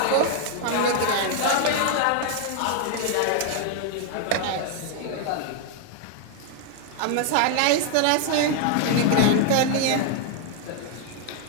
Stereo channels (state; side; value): different; both; correlation 0.00